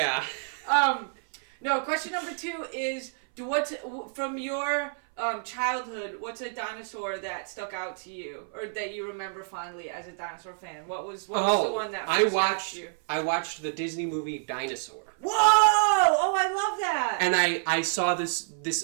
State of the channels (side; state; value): left; silent; 59 dB below the other